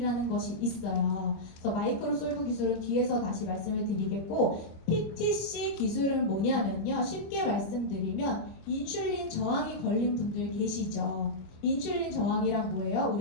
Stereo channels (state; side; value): late; right; 25 ms